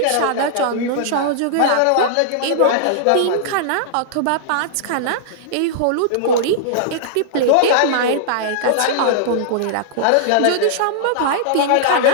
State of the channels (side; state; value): both; different; correlation -0.01